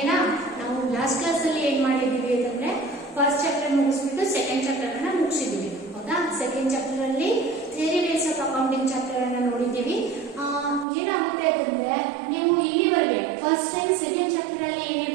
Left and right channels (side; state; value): left; drops out; at 10.9 s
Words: na? ನಾವು last class ಅಲ್ಲಿ ಏನು ಮಾಡಿದ್ದೀವಿ ಅಂದ್ರೆ first chapter ಮುಗಿಸ್ಬಿಟ್ಟು second chapter ಅನ್ನ ಮುಗಿಸಿದ್ದೀವಿ. ಹೌದಾ? second chapter ಅಲ್ಲಿ theory base of accounting chapter ಅನ್ನ ನೋಡಿದ್ದೀವಿ. ಏನಾಗುತ್ತೆ ಅಂತಂದ್ರೆ ನೀವು ಇಲ್ಲಿವರೆಗೆ first and second chapter ಅಲ್ಲಿ